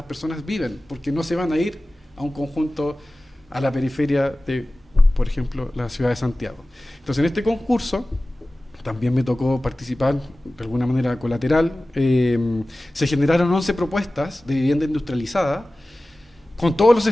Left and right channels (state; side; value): normal; both; correlation 0.97